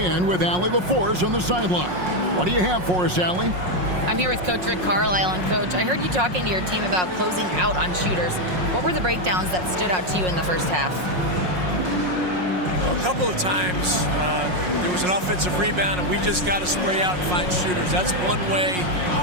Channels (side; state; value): left; late; 5.5 ms